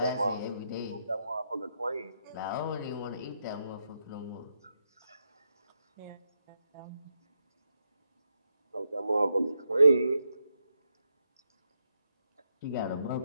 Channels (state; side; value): inverted; both; correlation -0.83